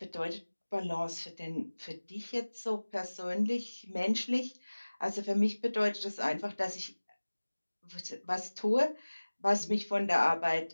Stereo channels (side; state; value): both; inverted; correlation -1.00